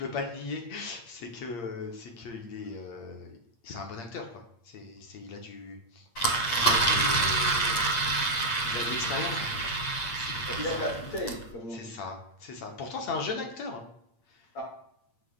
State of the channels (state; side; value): late; right; 8.6 ms